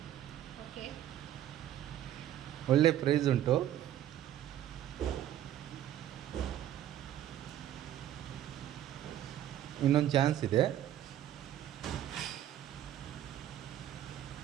ಒಳ್ಳೆ ಪ್ರೈಸ್ ಉಂಟು. ಇನ್ನೊಂದು ಚಾನ್ಸ್ ಇದೆ.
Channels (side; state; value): left; quieter; 11.8 dB